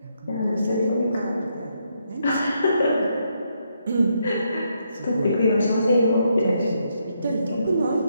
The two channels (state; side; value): inverted; both; correlation -0.77